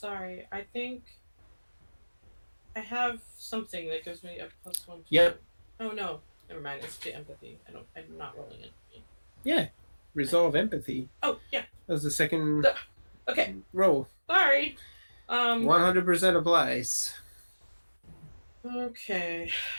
I think I have something that gives me a +1 to Yep. Oh no. Never mind. It's to empathy. I'm not rolling it. Yeah. Resolve empathy. Oh, yeah. That was the second Okay. roll. Sorry. 100% applies. Okay.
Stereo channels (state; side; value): inverted; both; correlation -1.00